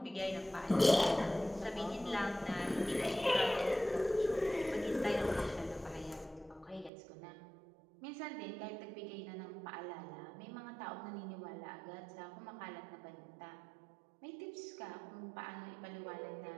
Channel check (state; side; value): drops out; left; at 6.9 s